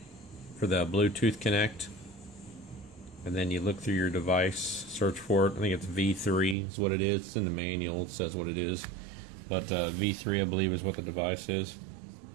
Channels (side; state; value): left; drops out; at 6.6 s